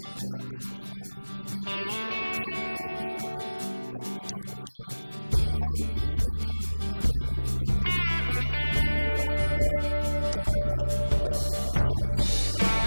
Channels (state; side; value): inverted; both; correlation -1.00